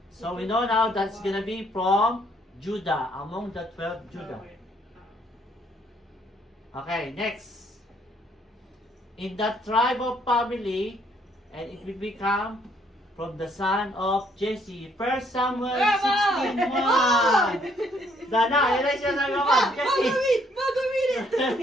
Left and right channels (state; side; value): normal; both; correlation 0.67